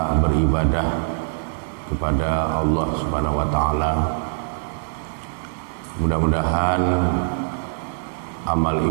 beribadah kepada Allah Subhanahu wa taala. Mudah-mudahan amal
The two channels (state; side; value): silent; left; digital silence